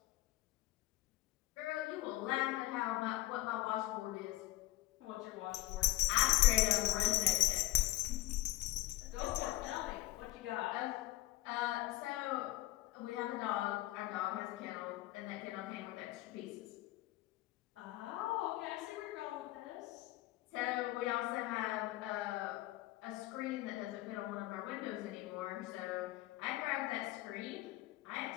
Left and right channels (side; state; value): right; quieter; 18.0 dB